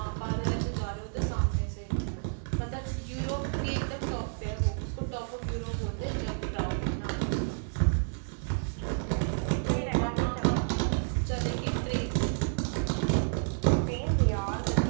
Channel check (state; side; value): silent; left; digital silence